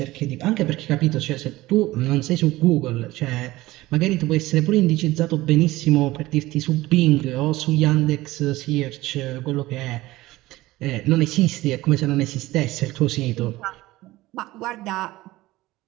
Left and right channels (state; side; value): quieter; left; 18.1 dB